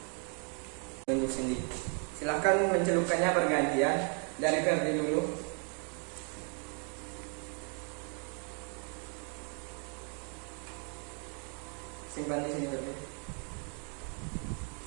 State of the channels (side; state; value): left; quieter; 39.6 dB